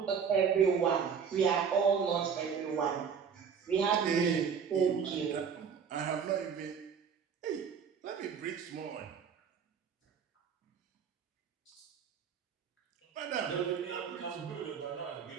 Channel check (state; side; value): quieter; left; 6.8 dB